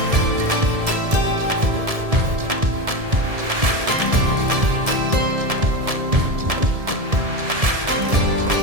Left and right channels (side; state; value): left; late; 1.7 ms